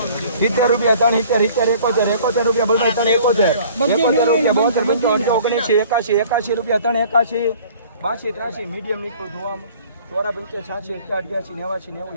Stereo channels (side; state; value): both; inverted; correlation -0.51